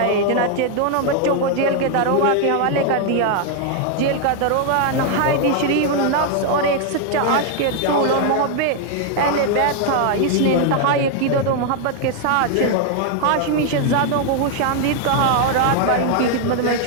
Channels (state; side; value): different; both; correlation 0.00